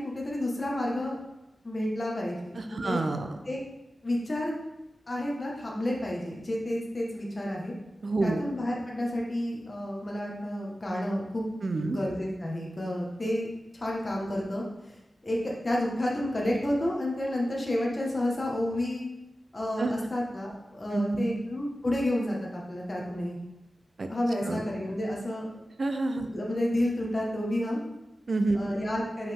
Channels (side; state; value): both; normal; correlation 0.94